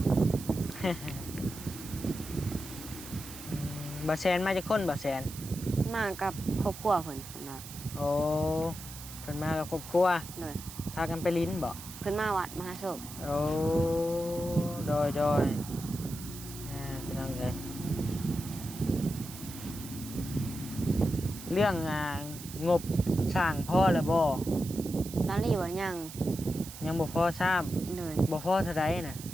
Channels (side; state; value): right; noise; hiss, 13 dB below the sound